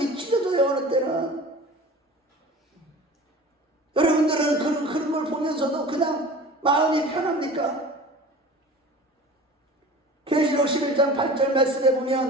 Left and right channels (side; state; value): both; normal; correlation 0.39